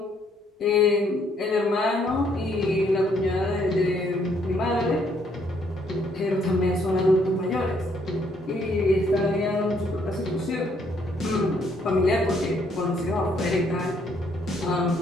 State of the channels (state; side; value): normal; both; correlation 0.68